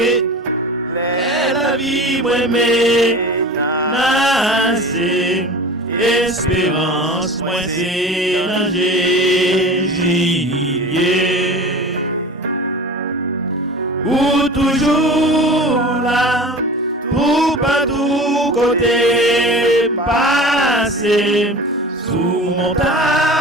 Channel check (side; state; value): both; normal; correlation 0.37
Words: la vie moins menacée, espérance moins c'est dans Jésus. Ou toujours là, tout partout côté passé, sous